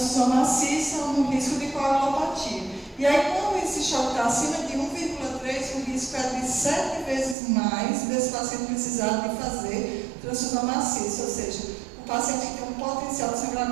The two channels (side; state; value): left; drops out; at 7.4 s